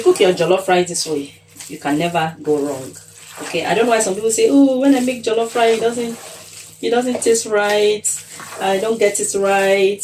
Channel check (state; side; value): identical; both; correlation 1.00